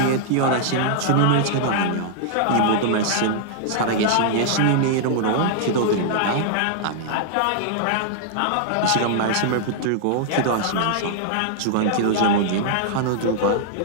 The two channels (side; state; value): both; different; correlation -0.01